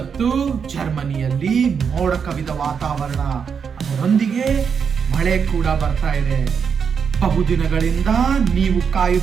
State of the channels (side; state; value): left; quieter; 6.6 dB